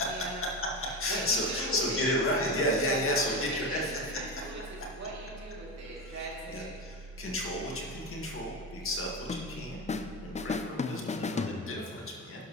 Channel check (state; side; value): normal; both; correlation 0.20